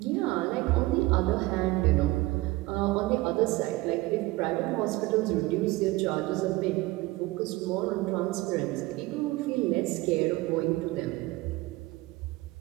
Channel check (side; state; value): left; quieter; 20.2 dB